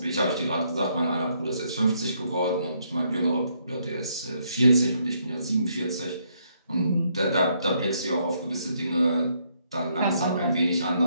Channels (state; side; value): inverted; both; correlation -0.73